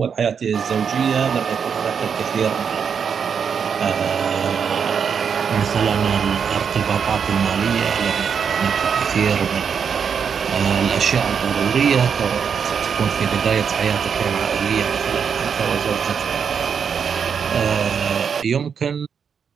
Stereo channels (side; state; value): left; quieter; 6.8 dB